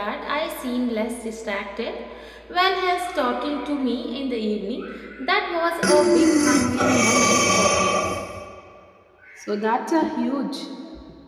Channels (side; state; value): both; identical; correlation 1.00